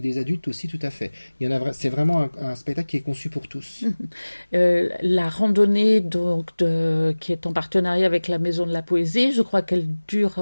adultes aussi, tout à fait. C'est vraiment un spectacle qui est conçu pour tous. La randonnée donc qui est en partenariat avec la Maison de la Poésie, je crois qu'elle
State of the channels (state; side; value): inverted; both; correlation -1.00